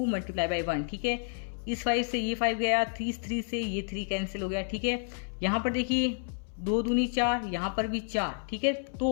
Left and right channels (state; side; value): silent; right; 58 dB below the other